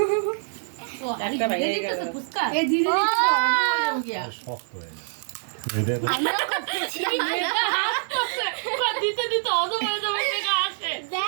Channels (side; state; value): left; silent; digital silence